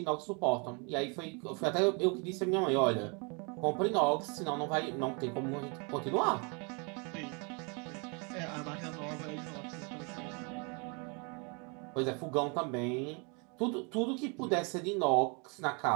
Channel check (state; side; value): quieter; left; 33.4 dB